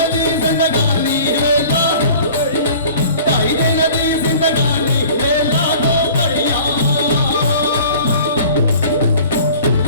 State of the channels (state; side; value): inverted; both; correlation -0.46